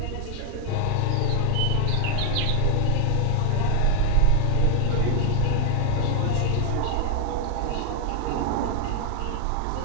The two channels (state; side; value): different; both; correlation 0.00